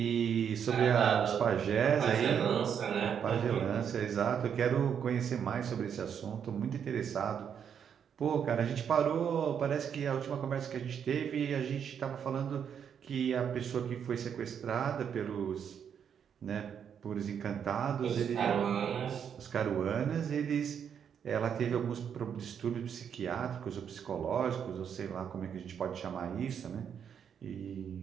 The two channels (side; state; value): left; quieter; 7.9 dB